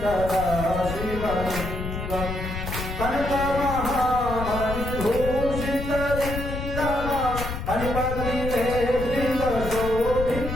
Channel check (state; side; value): noise; left; rumble, 6 dB below the sound